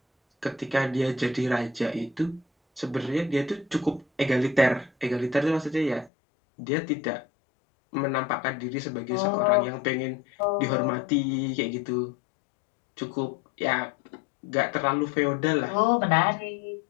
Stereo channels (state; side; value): drops out; right; at 6.1 s